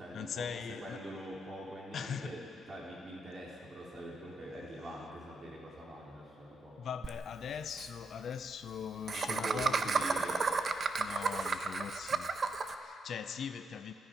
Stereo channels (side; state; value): both; normal; correlation 0.79